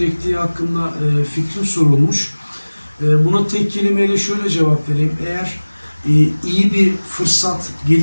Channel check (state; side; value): inverted; both; correlation -1.00